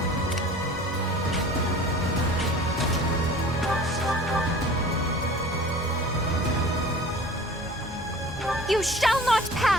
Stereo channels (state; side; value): normal; both; correlation 0.44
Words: You shall not